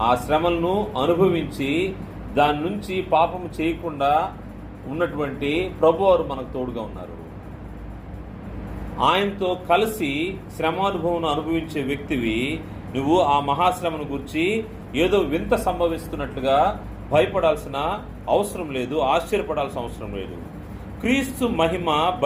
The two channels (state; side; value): identical; both; correlation 1.00